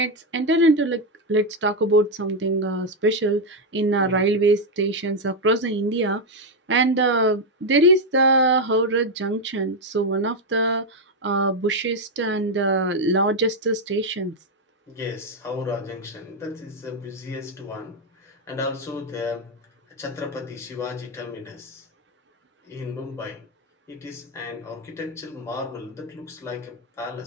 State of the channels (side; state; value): both; normal; correlation 0.04